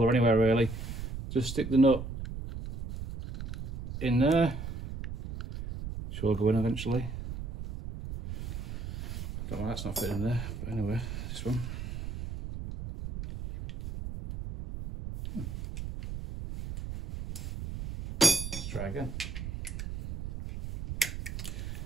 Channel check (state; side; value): noise; right; rumble, 7 dB below the sound